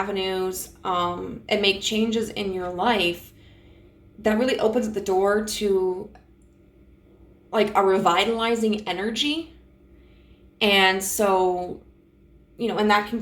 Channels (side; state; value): both; identical; correlation 1.00